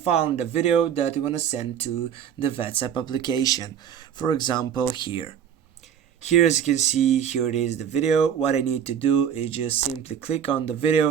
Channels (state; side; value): quieter; left; 8.8 dB